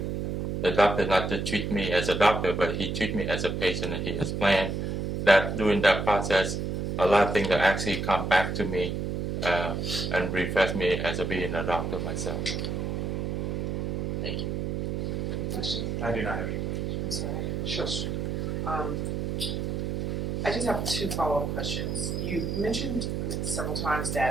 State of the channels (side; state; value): right; noise; hum, 1 dB below the sound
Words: The doctor not to treat me as a doctor, but he treat me as a patient, and he explained that during that process, a lot of things that actually come back to me and refresh me as a being a doctor myself. Thank you. Any questions? I do not have any. I'm sorry, I have a Sure. question. I just have two follow-up questions. You mentioned several times